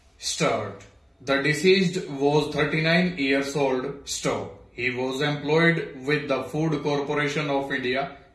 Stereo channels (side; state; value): both; identical; correlation 1.00